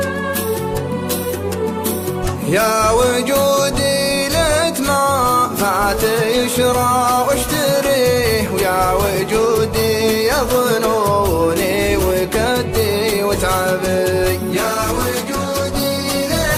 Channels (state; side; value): identical; both; correlation 1.00